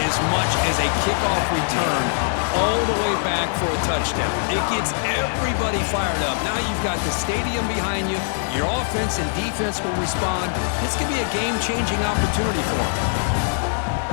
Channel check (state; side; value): silent; right; digital silence